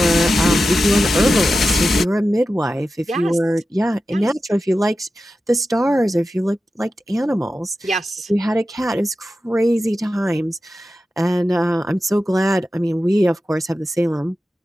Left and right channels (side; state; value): both; normal; correlation 0.92